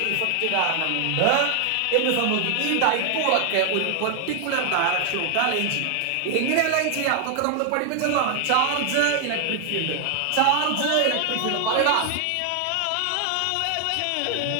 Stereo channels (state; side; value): different; both; correlation 0.00